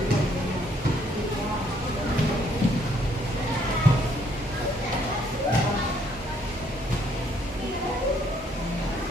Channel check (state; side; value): normal; both; correlation 0.67